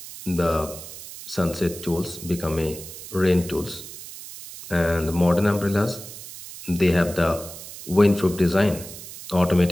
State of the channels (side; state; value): right; noise; hiss, 13 dB below the sound